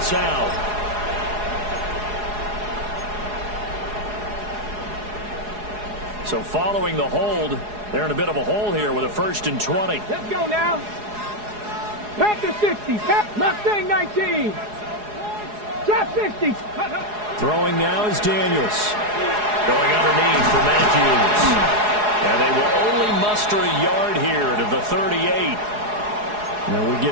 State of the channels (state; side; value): late; left; 4.8 ms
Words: out. So following the hold, they're in a bit of a hole here with a 1st and 20. Let's go now. Panther 60. Mustang 19. Trap 60. Throwing now is Daniels. Going underneath for Matthews. And they will only muster a yard here to the 38. Now we